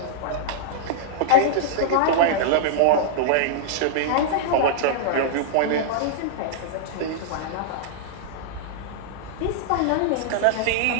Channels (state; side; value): different; both; correlation -0.02